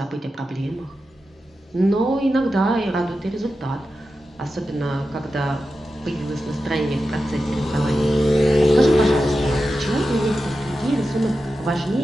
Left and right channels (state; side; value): normal; both; correlation 0.91